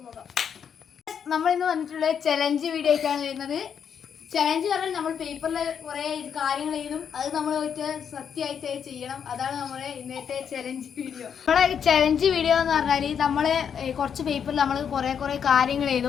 പോകാം. നമ്മൾ ഇന്ന് വന്നിട്ടുള്ള ചലഞ്ച് വീഡിയോ ആയിട്ടാണ് വരുന്നത്. ചലഞ്ച് പറഞ്ഞാൽ നമ്മൾ പേപ്പറിൽ കുറേ കാര്യങ്ങൾ എഴുതും, അത് നമ്മൾ പോയിട്ട് സത്യമായിട്ട് ചെയ്യണം. അതാണ് നമ്മുടെ ഇന്നത്തെ ചലഞ്ച് വീഡിയോ. നമ്മുടെ ചലഞ്ച് വീഡിയോ എന്ന് പറഞ്ഞാൽ നമ്മൾ കുറച്ച് പേപ്പറിൽ നമ്മൾ കുറേ കാര്യങ്ങൾ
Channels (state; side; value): quieter; right; 7.6 dB